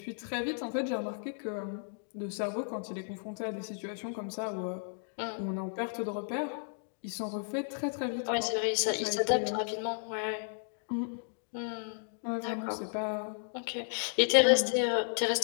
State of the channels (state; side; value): silent; right; digital silence